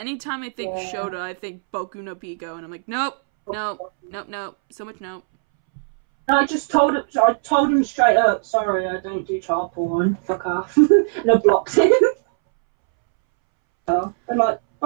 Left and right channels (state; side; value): silent; left; 65 dB below the other